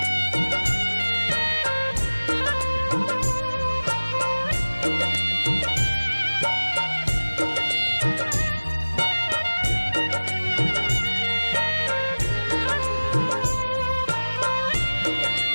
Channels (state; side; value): inverted; both; correlation -1.00